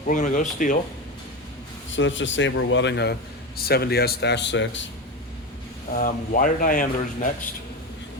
we're going to go steel. So let's just say we're welding a 70S-6. Wire diameters next.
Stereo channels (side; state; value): both; normal; correlation 0.19